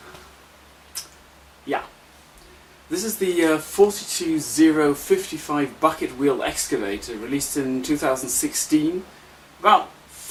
Yeah, this is the 42055 bucket wheel excavator, released in 2016. About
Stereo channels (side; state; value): both; identical; correlation 1.00